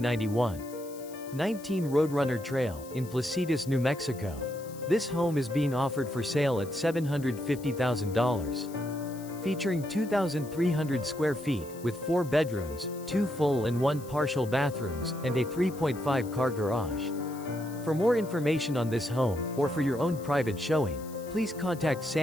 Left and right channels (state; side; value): noise; left; hiss, 19 dB below the sound